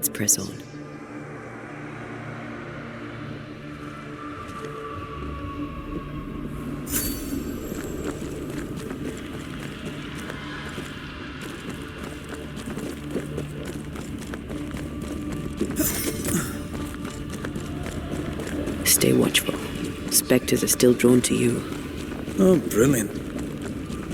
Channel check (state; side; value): identical; both; correlation 1.00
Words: press on. Stay watchful. Spectres are still drawn to you. Oh, brilliant.